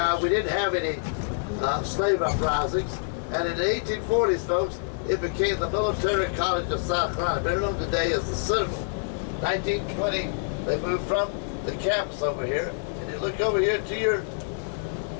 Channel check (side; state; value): right; silent; 60 dB below the other